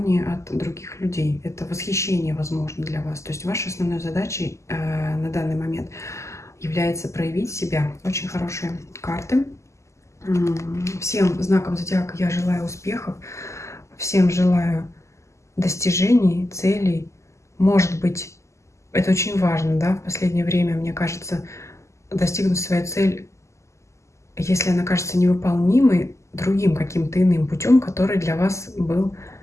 от других людей, это восхищение, возможно, для вас. То есть вашей основной задачей на данный момент является проявить себя. Очень хорошие карты. Всем знакам зодиака я желаю успехов, всем желаю достижений, целей. Может быть, это очень важно, да, в последнее время, мне кажется, достигнуть свою цель, если она кажется невыполнимой, другим каким-то иным путем, который для вас был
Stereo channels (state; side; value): late; right; 0.14 ms